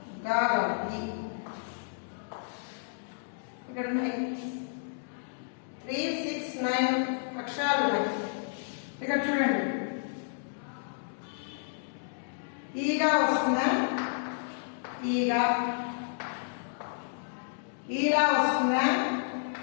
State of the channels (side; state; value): right; silent; digital silence